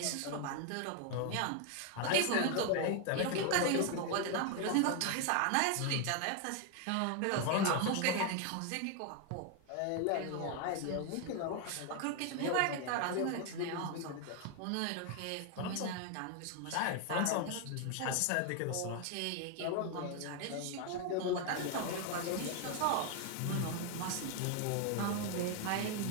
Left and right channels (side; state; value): both; different; correlation 0.01